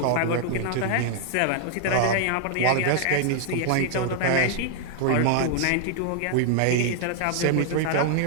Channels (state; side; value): different; both; correlation 0.00